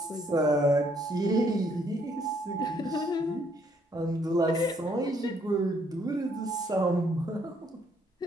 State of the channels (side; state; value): both; normal; correlation 0.68